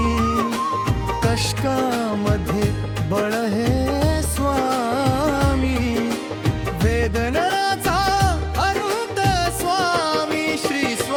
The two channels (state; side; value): identical; both; correlation 1.00